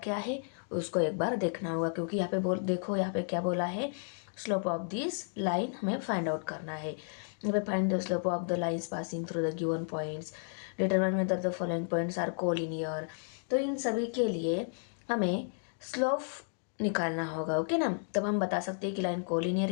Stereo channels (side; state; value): right; silent; 56 dB below the other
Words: क्या है, उसको एक बार देखना होगा। क्योंकि यहाँ पे देखो यहाँ पे क्या बोला है, स्लोप ऑफ दिस लाइन हमें फाइंड आउट करना है। यहाँ पे find the slope of the lines passing through the given points, determine whether the following points are collinear. तो इन सभी के लिए हमें स्लोप निकालना होगा। ओके ना, तब हम बता सकते हैं कि लाइन कोलिनियर